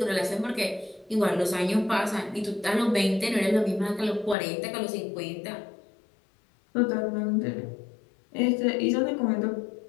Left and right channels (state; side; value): drops out; right; at 4.4 s